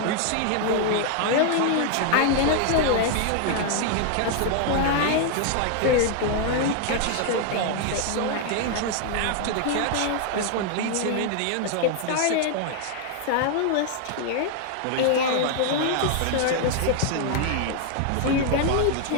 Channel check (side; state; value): both; different; correlation 0.00